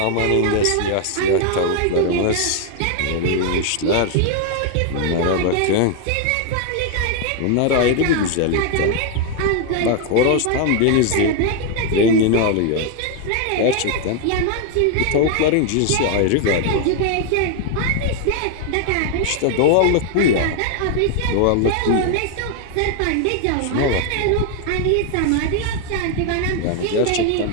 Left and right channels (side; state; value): both; different; correlation 0.01